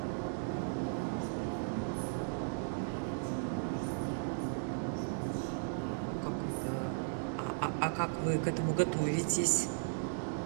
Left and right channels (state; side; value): silent; left; digital silence